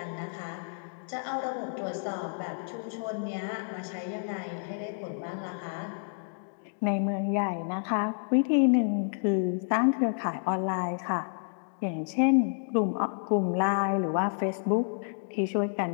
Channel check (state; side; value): silent; right; digital silence